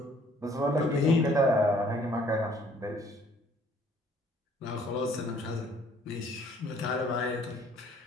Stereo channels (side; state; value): both; normal; correlation 0.59